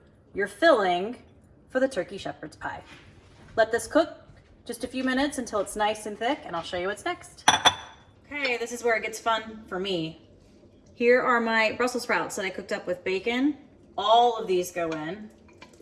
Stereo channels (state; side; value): identical; both; correlation 1.00